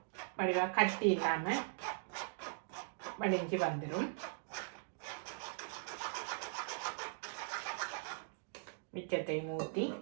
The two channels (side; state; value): left; silent; digital silence